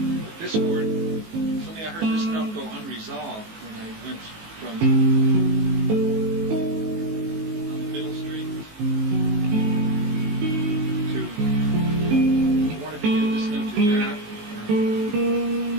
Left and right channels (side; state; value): left; late; 18 ms